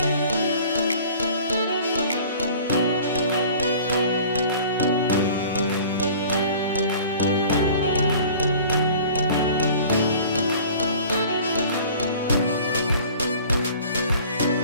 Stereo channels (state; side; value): inverted; both; correlation -0.46